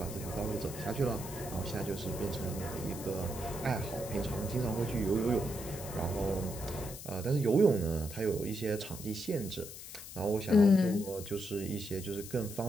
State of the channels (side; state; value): left; noise; hiss, 12 dB below the sound